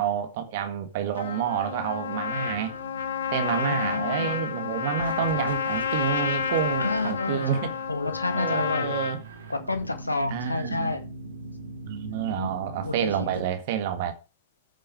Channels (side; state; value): both; inverted; correlation -0.44